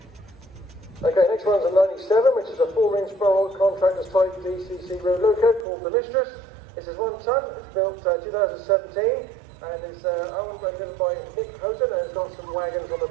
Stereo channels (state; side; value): drops out; left; at 5.7 s